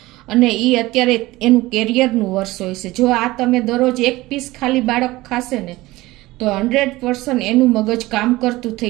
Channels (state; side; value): quieter; left; 19.0 dB